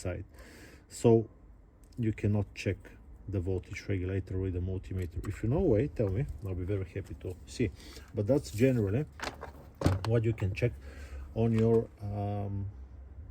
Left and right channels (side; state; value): both; identical; correlation 1.00